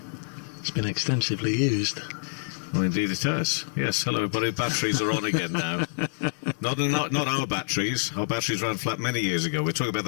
It's been extensively used. Well, indeed it has. Yes, hello everybody, batteries are on again now. Not our batteries. Our batteries ran flat many years ago. We're talking about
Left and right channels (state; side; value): silent; right; digital silence